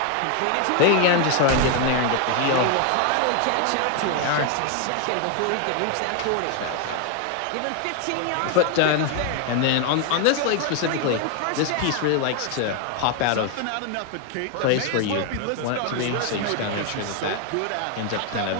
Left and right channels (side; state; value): both; different; correlation 0.01